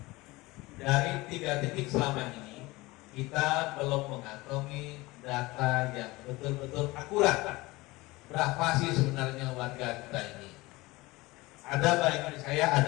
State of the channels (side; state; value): right; quieter; 21.3 dB